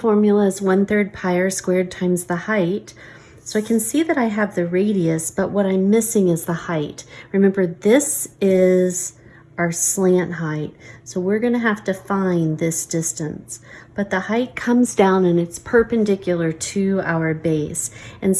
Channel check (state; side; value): identical; both; correlation 1.00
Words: is 1/3 pi r squared times the height. So I can see that I have the radius, but what I'm missing is the height. Remember, this is our slant height. So we're gonna have to find this distance. But the height comes down and it's perpendicular to our base. And